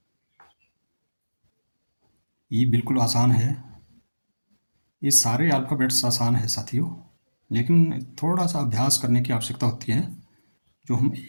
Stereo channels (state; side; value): inverted; both; correlation -1.00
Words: ई बिल्कुल आसान है, ये सारे अल्फ़ाबेट्स आसान है साथियों, लेकिन थोड़ा सा अभ्यास करने की आवश्यकता होती है, जो हम